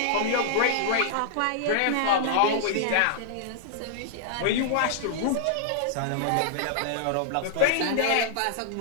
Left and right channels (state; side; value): different; both; correlation -0.01